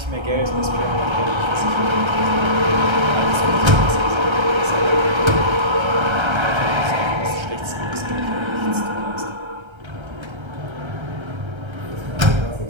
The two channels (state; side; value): late; left; 1.3 ms